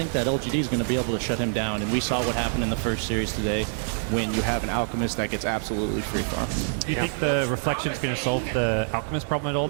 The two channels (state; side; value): silent; left; 55 dB below the other